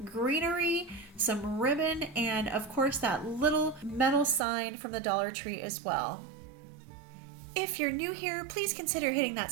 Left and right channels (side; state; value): left; drops out; at 4.4 s